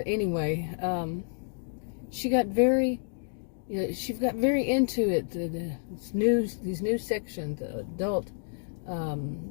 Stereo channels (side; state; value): right; silent; digital silence